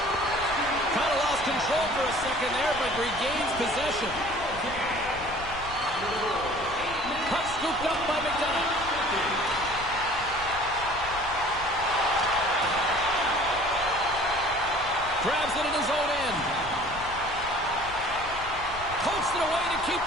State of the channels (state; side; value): noise; left; rumble, 14 dB below the sound